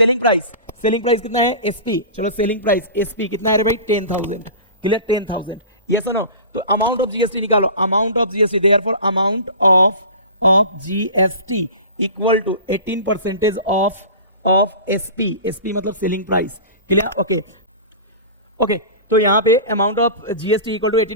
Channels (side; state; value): both; inverted; correlation -0.34